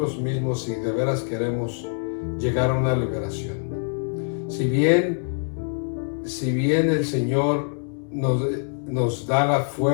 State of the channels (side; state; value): right; silent; 62 dB below the other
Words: mismos si de veras queremos llegar a una liberación. Si bien el Señor nos da la